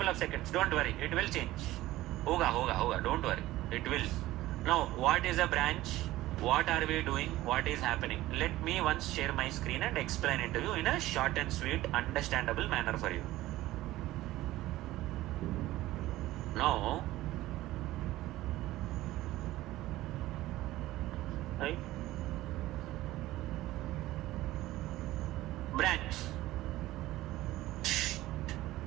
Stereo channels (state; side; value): quieter; left; 16.5 dB